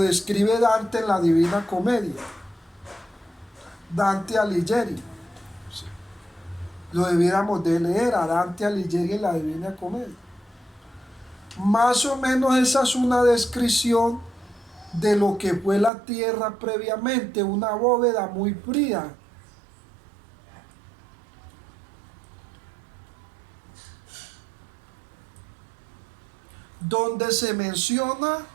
Dante en la Divina Comedia. Dante Alighieri. ¿Sí? Lo debiéramos de leer a Dante Alighieri en la Divina Comedia. Más o menos esa es una descripción de lo que fue la tierra previamente, una bóveda muy fría, donde se menciona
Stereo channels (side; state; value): left; drops out; at 15.9 s